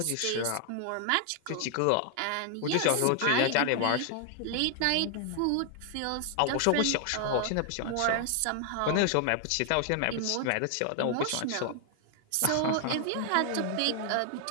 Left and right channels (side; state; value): both; different; correlation 0.00